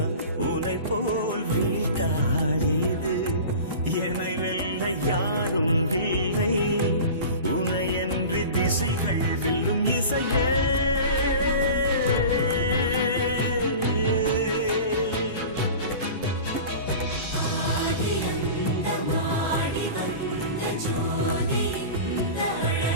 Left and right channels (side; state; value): both; inverted; correlation -0.35